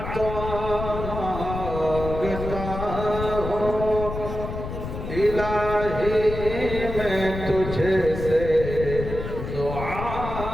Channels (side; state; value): left; noise; rumble, 6 dB below the sound